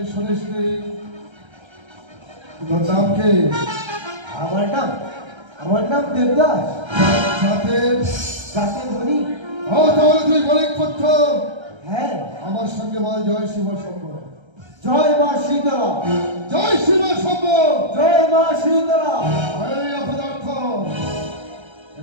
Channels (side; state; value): left; late; 1.3 ms